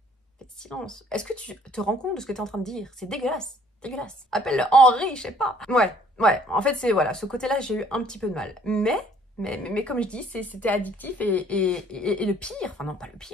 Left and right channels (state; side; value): normal; both; correlation 0.59